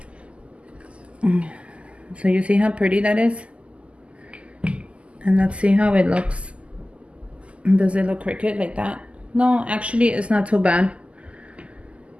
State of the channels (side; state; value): left; late; 0.057 ms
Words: So you see how pretty that is? And let's see how it looks. Does it look crooked like that? No, actually it's not too bad,